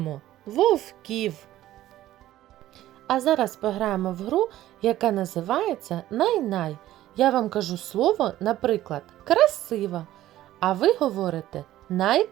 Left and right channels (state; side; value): quieter; left; 14.2 dB